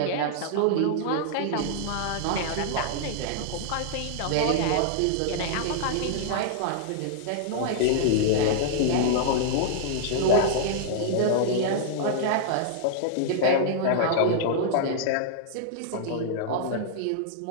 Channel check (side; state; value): both; different; correlation -0.01